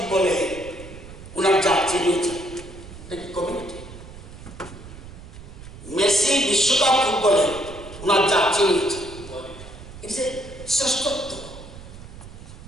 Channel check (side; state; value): right; noise; rumble, 15 dB below the sound